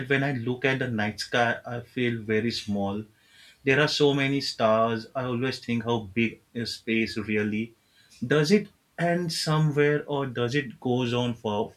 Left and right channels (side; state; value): both; identical; correlation 1.00